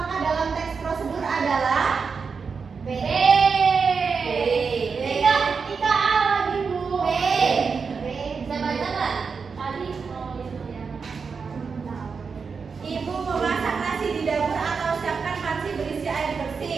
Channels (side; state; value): left; quieter; 5.4 dB